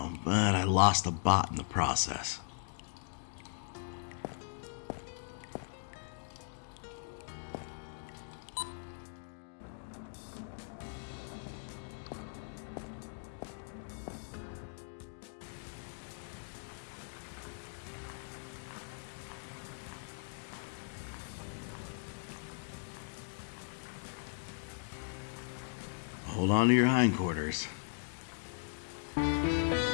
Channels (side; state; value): right; silent; digital silence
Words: but I lost a bot in the process. Hold on to your hindquarters.